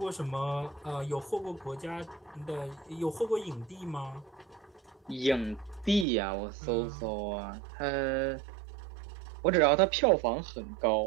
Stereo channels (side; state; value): left; drops out; at 6.1 s